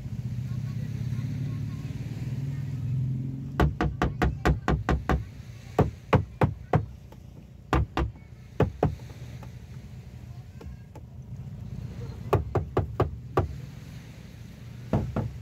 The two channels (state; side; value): identical; both; correlation 1.00